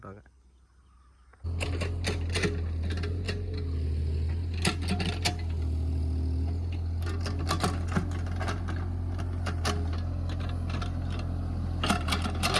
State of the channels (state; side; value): identical; both; correlation 1.00